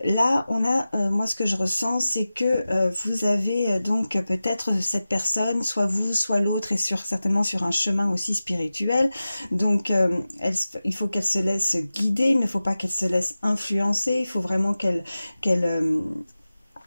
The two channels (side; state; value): both; inverted; correlation -0.95